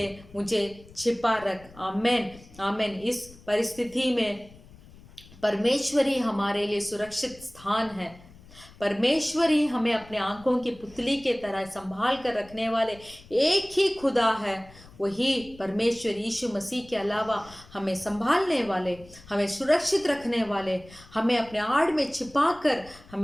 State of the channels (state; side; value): noise; left; rumble, 22 dB below the sound